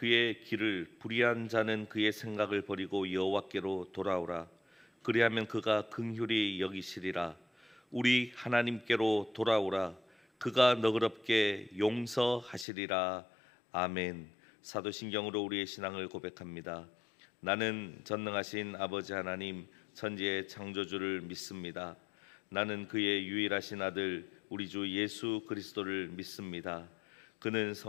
길을 불의한 자는 그의 생각을 버리고 여호와께로 돌아오라. 그리하면 그가 긍휼히 여기시리라. 우리 하나님께로 돌아오라. 그가 너그럽게 용서하시리라. 아멘. 사도신경으로 우리의 신앙을 고백합니다. 나는 전능하신 아버지 하나님 천지의 창조주를 믿습니다. 나는 그의 유일하신 아들 우리 주 예수 그리스도를 믿습니다. 그는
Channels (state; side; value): drops out; right; at 12.7 s